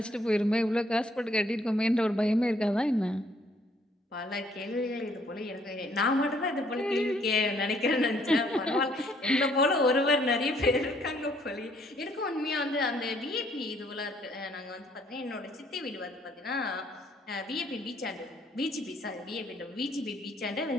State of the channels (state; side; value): normal; both; correlation 0.65